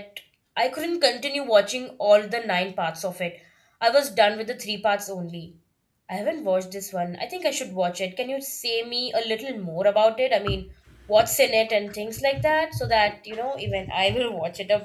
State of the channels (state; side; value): identical; both; correlation 1.00